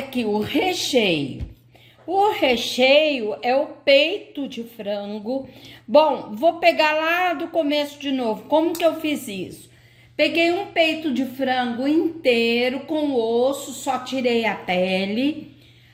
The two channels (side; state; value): both; identical; correlation 1.00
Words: o recheio. O recheio é o peito de frango. Bom, vou pegar lá do começo de novo. Como que eu fiz isso? Peguei um peito de frango inteiro com osso, só tirei a pele.